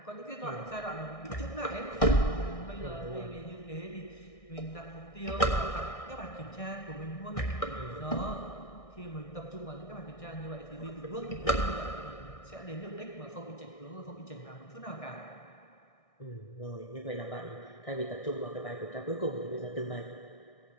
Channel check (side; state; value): right; late; 1.6 ms